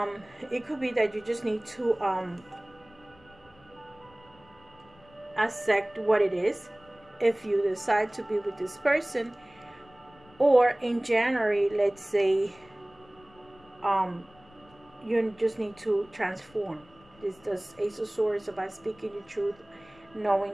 it could be that you just need to accept what it is if you decide to be with this person. Or in January, let's say, you just need to transform. This Ace of Swords about speaking your truth,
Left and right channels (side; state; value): left; noise; rumble, 27 dB below the sound